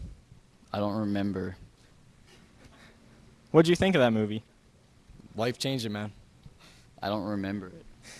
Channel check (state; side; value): identical; both; correlation 1.00